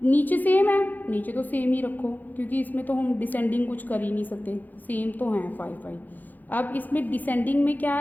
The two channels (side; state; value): right; late; 0.084 ms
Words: नीचे सेम है, नीचे तो सेम ही रखो क्योंकि इसमें तो हम डिसेंडिंग कुछ कर ही नहीं सकते, सेम तो है 5 5. अब इसमें डिसेंडिंग में